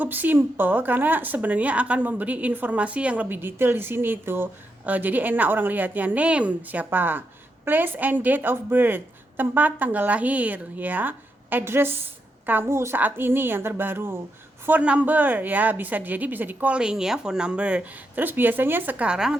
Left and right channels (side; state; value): both; normal; correlation 0.83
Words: simple, karena sebenarnya akan memberi informasi yang lebih detail di sini itu. Jadi enak orang lihatnya. Name siapa, place and date of birth, tempat tanggal lahir ya, address kamu saat ini yang terbaru, phone number ya, bisa di calling ya, phone number. Terus biasanya